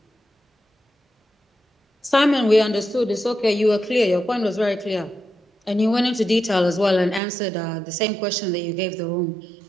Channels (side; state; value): left; drops out; at 7.2 s